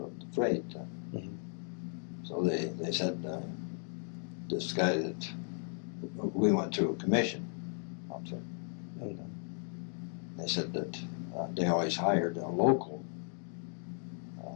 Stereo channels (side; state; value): right; silent; 54 dB below the other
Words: freight. So they said this guy that we went through a commission outfit, and they said that they always hired a local.